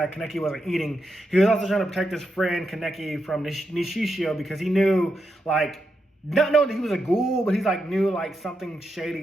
Kaneki wasn't eating. He was also trying to protect his friend Kaneki from Nishishio, because he knew, like, not knowing that he was a ghoul, but he's like knew like something shady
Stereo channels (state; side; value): normal; both; correlation 0.85